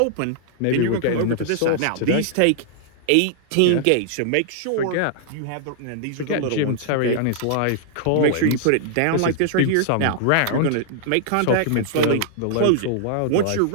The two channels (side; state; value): both; different; correlation -0.01